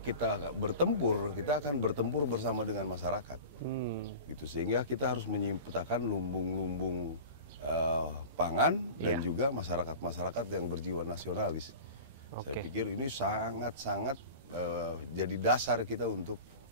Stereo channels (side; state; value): both; inverted; correlation -0.35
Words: kita bertempur, kita akan bertempur bersama dengan masyarakat. Gitu. Sehingga kita harus menciptakan lumbung-lumbung pangan dan juga masyarakat-masyarakat yang berjiwa nasionalis. Saya pikir ini sangat-sangat jadi dasar kita untuk